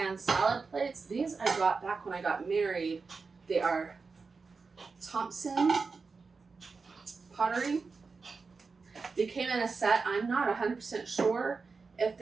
salad plates. These I got back when I got married. They are Thompson pottery. They came in a set. I'm not 100% sure if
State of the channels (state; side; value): quieter; left; 4.6 dB